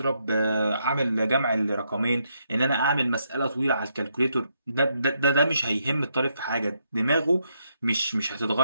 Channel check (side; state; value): both; inverted; correlation -0.78